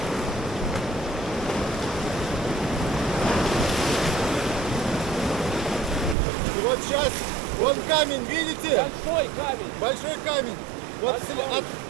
И вот сейчас. Вон камень, видите? Большой камень. Большой камень. Вот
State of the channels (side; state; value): left; drops out; at 6.2 s